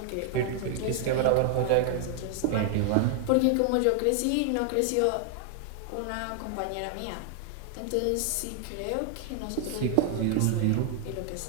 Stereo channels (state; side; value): different; both; correlation 0.00